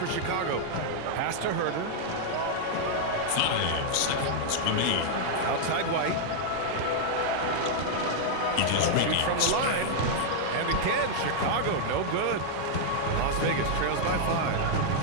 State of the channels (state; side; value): different; both; correlation -0.01